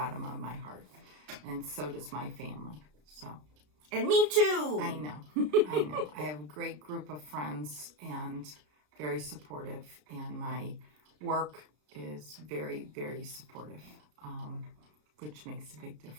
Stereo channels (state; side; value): late; left; 33 ms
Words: of my heart. And so does my family. So. And me too. I know. I know. I have a great group of friends and very supportive. And my work is very, very supportive, which makes a big